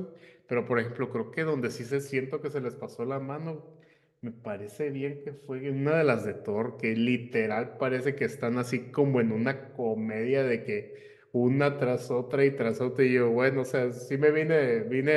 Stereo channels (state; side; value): identical; both; correlation 1.00